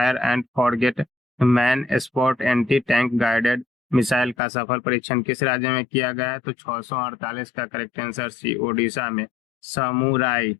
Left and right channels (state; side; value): drops out; right; at 4.4 s